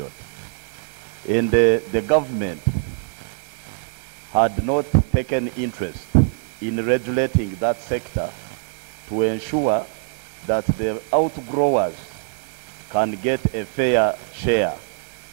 And the government had not taken interest in regulating that sector to ensure that the outgrowers can get a fair share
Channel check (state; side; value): silent; left; 63 dB below the other